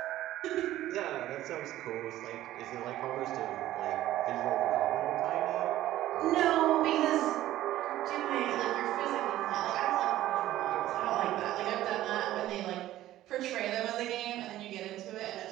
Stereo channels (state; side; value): quieter; left; 14.3 dB